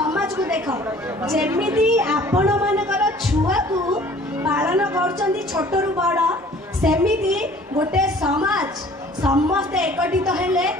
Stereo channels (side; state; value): both; normal; correlation 0.51